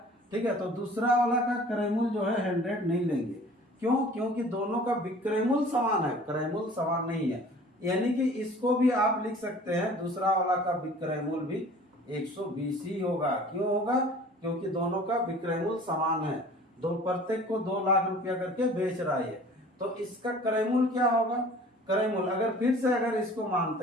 ठीक है। तो दूसरा वाला का क्रय मूल्य जो है 100 नहीं लेंगे। क्यों, क्योंकि दोनों का विक्रय मूल्य समान है, क्रय मूल्य समान नहीं है। यानी कि इसको भी आप लिख सकते हैं, दूसरा वाला का विक्रय मूल्य भी 120 ही होगा। क्यों होगा, क्योंकि दोनों का विक्रय मूल्य समान है। दो प्रत्येक को 2 लाख रुपया करके बेच रहा है। तो इसका क्रय मूल्य क्या होगा, क्रय मूल्य अगर फिर से अगर इसको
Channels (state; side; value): normal; both; correlation 0.47